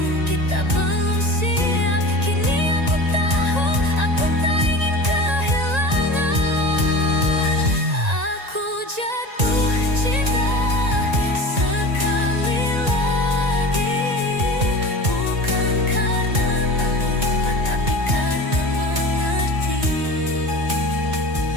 kita belum siap, kini aku tahu aku tak ingin kehilangan. Aku jatuh cinta sekali lagi, bukan karena lupa, tapi karena mengerti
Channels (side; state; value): left; late; 1.9 ms